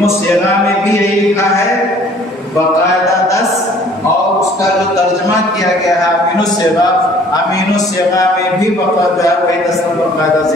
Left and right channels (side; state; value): both; normal; correlation 0.55